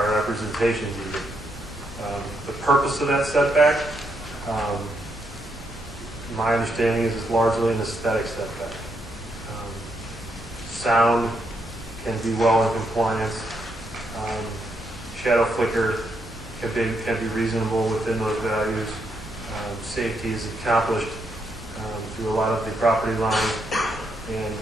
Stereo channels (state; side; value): normal; both; correlation 0.79